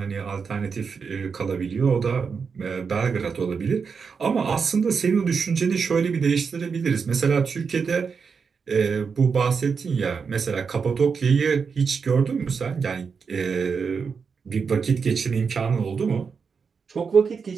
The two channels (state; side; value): quieter; left; 5.7 dB